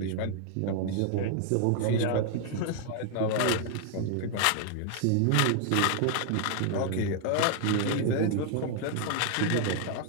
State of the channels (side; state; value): both; different; correlation 0.00